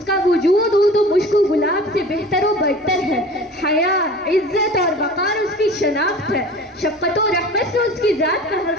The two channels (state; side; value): normal; both; correlation 0.41